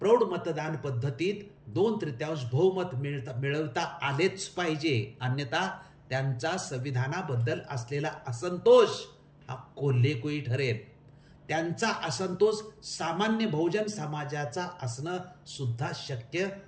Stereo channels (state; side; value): identical; both; correlation 1.00